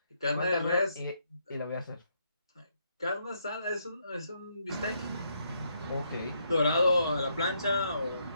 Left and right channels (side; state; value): both; inverted; correlation -0.76